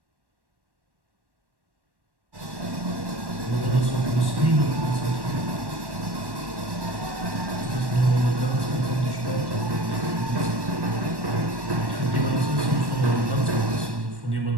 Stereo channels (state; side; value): late; left; 1.1 ms